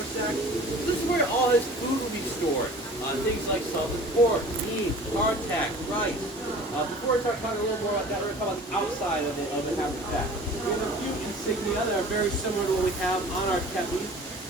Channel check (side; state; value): both; normal; correlation 0.45